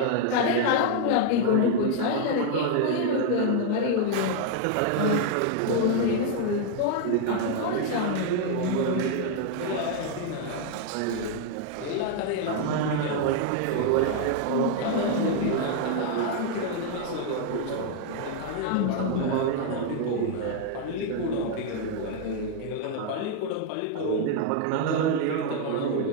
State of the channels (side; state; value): both; different; correlation 0.00